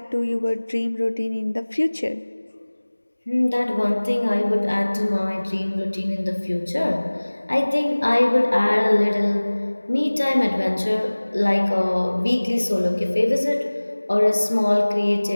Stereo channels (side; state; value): both; inverted; correlation -1.00